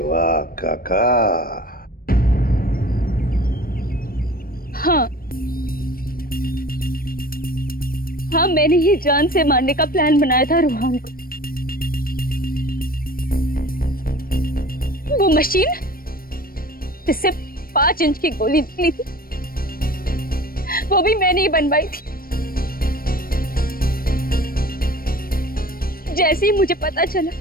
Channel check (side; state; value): right; late; 0.43 ms